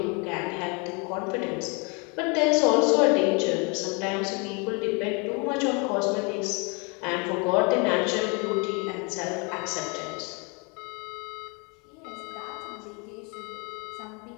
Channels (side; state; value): right; quieter; 32.1 dB